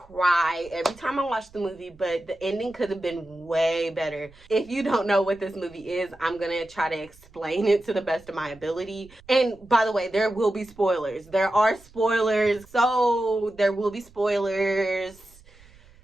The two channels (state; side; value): noise; right; rumble, 25 dB below the sound